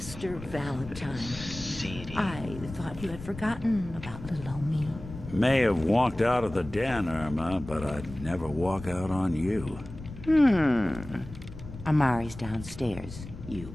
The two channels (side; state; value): left; noise; rumble, 13 dB below the sound